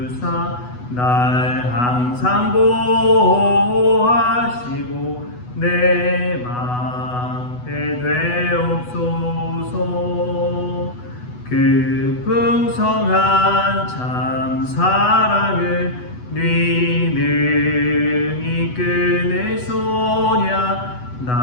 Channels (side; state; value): right; late; 8.1 ms